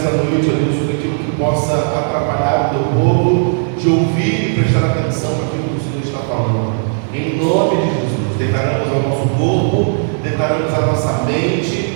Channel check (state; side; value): silent; left; digital silence